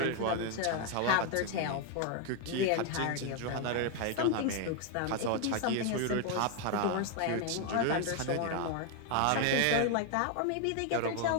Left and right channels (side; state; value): both; different; correlation 0.01